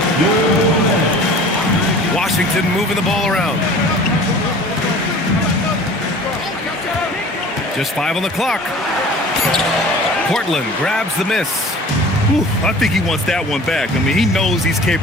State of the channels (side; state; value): both; normal; correlation 0.44